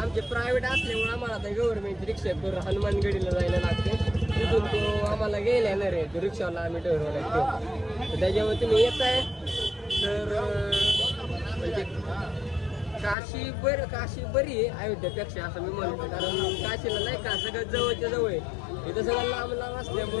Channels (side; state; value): right; drops out; at 13.2 s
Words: प्रायव्हेट असल्यामुळे आम्हाला आता गव्हर्नमेंटची रिक्षा करून हनुमानगडीला जायला लागते. तिथून तो आम्हाला गेला येणार आहे, तो रिक्षावाला आम्ही ठरवला तो. तर त्याच्यामुळे तुम्ही येत आहे तर म्हणजे काशी बरी आहे अयोध्येपेक्षा असं मी म्हणतो. कारण काशीला नाही का सगळं जवळच्या जवळ आहे. इथं सगळं लांब